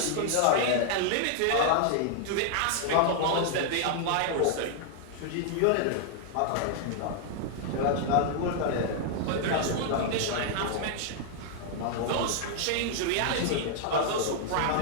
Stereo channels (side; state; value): both; different; correlation 0.00